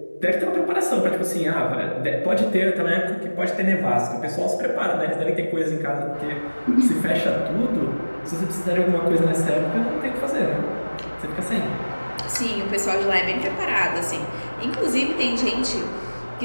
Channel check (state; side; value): inverted; both; correlation -1.00